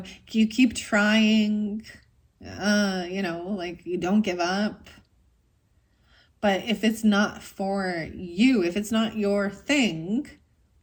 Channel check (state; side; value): identical; both; correlation 1.00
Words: you keep trying, like you don't give up. But if it's not for you, if it's not your thing,